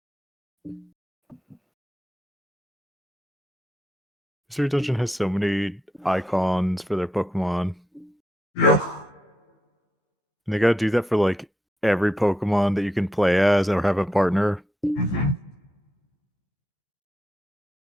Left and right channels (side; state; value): both; normal; correlation 0.83